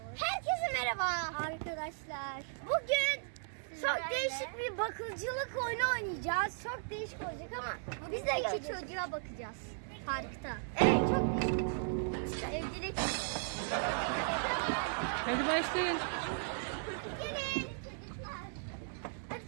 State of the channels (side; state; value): left; silent; 53 dB below the other